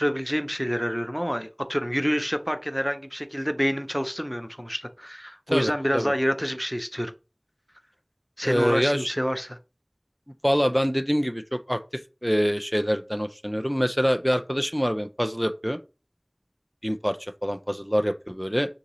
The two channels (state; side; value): identical; both; correlation 1.00